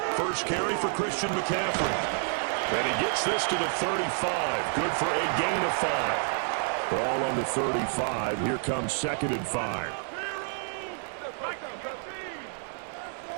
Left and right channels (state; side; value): silent; left; 55 dB below the other